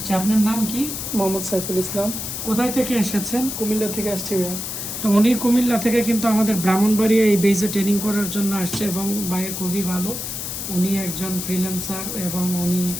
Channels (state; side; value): noise; left; hiss, 5 dB below the sound